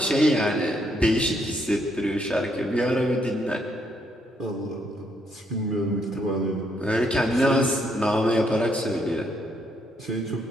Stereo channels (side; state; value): both; normal; correlation 0.73